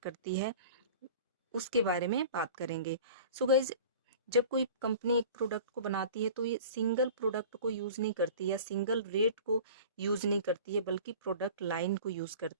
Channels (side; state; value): both; inverted; correlation -0.40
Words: है, उसके बारे में बात करेंगे। सो गाइस, जब कोई कंपनी एक प्रोडक्ट को बनाती है तो ये सिंगल प्रोडक्ट को यूज़ नहीं करती या सिंगल रेट को यूज़ नहीं करती है, बल्कि प्रोडक्ट लाइन को यूज़